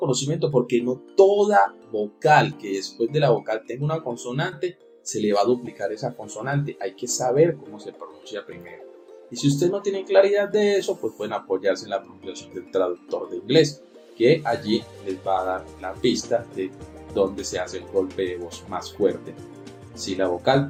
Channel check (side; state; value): both; identical; correlation 1.00